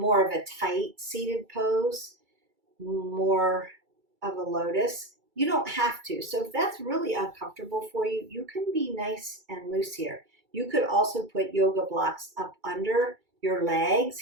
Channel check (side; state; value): left; late; 2.3 ms